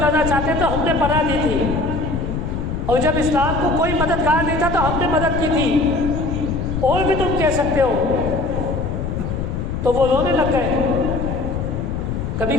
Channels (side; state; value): left; noise; rumble, 3 dB below the sound